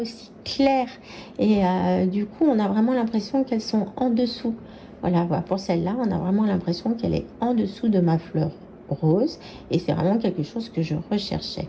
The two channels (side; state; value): both; identical; correlation 1.00